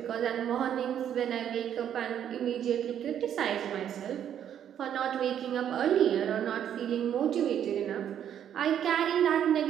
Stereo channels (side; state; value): left; quieter; 9.6 dB